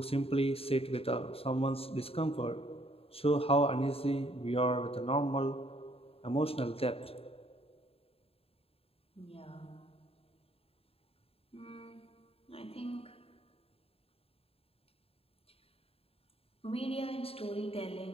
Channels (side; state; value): right; late; 0.28 ms